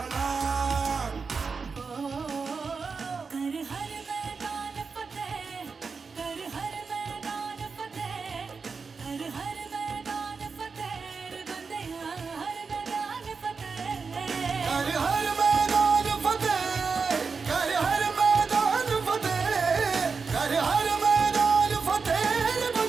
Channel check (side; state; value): left; quieter; 5.0 dB